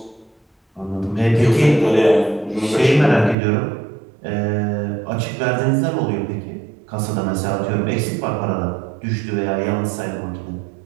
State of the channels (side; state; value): left; drops out; at 3.4 s